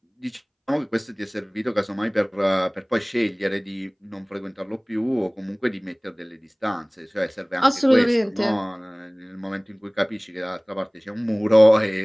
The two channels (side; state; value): both; identical; correlation 1.00